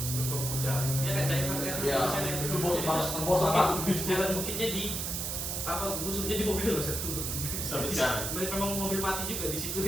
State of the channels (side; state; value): right; noise; hiss, 2 dB below the sound